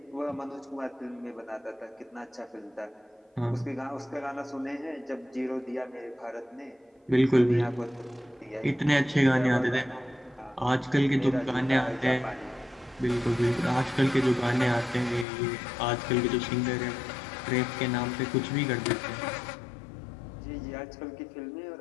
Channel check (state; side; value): drops out; right; at 15.2 s